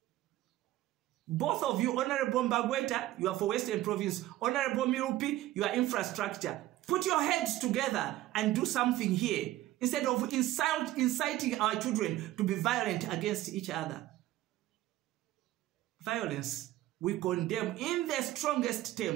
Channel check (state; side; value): quieter; left; 15.3 dB